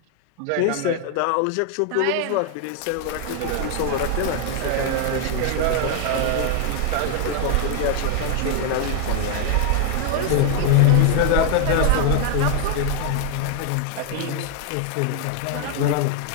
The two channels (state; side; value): different; both; correlation 0.00